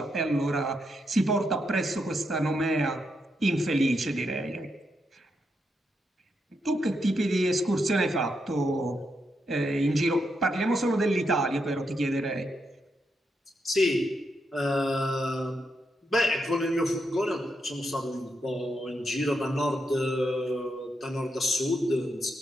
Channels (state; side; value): normal; both; correlation 0.82